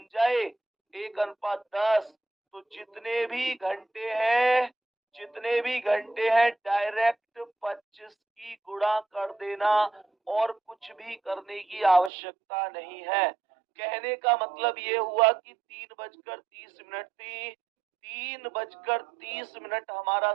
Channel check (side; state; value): left; drops out; at 12.1 s